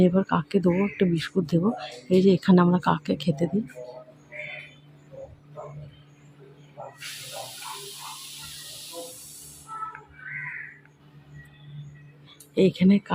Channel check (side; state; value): both; identical; correlation 1.00